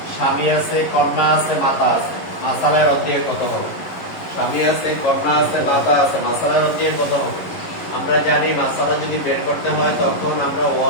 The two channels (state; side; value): late; right; 11 ms